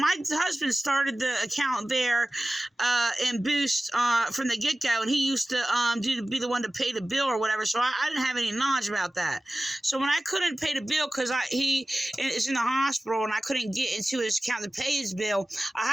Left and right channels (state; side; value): normal; both; correlation 0.96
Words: husband started the account there in Boost from the get-go, and he used to be the one to pay the bill or whatever, so I didn't have any knowledge about that. So when I couldn't pay the bill because he is in the hospital and I couldn't get into his account to pay his bill, I